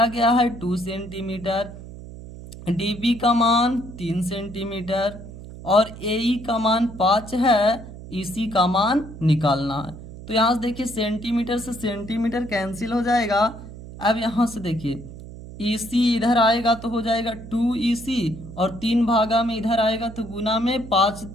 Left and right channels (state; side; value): noise; right; hum, 14 dB below the sound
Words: गया है 2 सेंटीमीटर, DB का मान 3 सेंटीमीटर और AE का मान 5 है, EC का मान निकालना है। तो यहाँ से देखिए सेंटीमीटर से सेंटीमीटर कैंसिल हो जाएगा। अब यहाँ से देखिए EC इधर आएगा तो हो जाएगा 2EC और 3 भागा में इधर आएगा तो गुना में 5